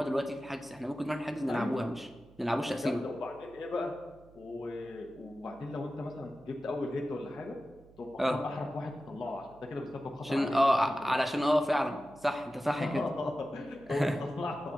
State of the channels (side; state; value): right; noise; hum, 24 dB below the sound